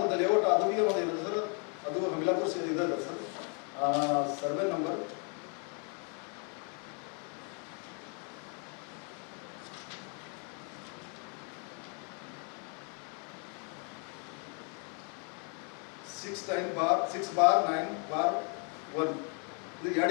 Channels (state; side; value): quieter; right; 38.4 dB